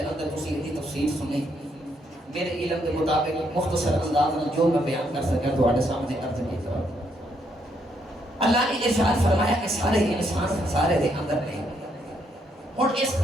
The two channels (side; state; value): both; normal; correlation 0.74